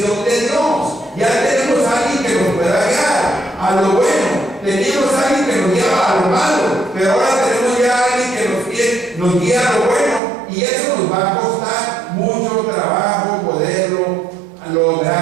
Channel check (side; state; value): left; drops out; at 10.2 s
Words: de Dios. Ya tenemos a alguien que nos pueda guiar a lo bueno, teníamos a alguien que nos guiaba a lo malo, pero ahora tenemos ya a alguien que nos guía a lo bueno, y eso nos va a costar mucho trabajo poderlo